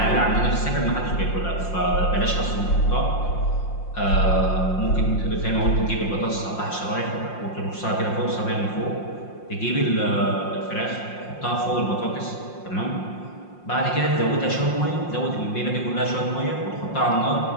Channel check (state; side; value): late; right; 5.7 ms